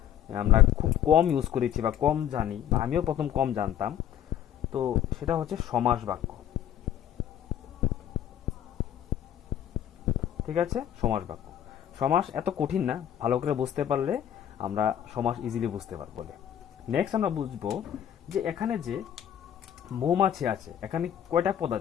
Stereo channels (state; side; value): quieter; right; 10.4 dB